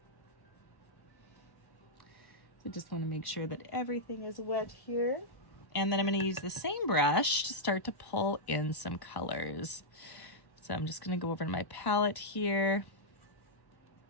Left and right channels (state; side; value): late; right; 1.0 ms